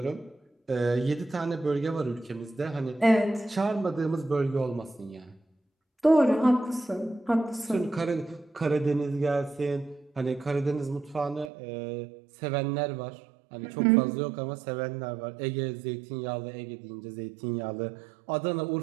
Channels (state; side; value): drops out; left; at 11.5 s